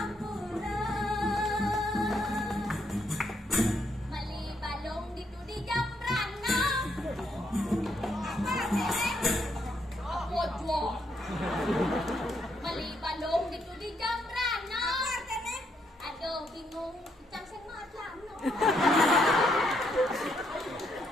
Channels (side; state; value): both; normal; correlation 0.75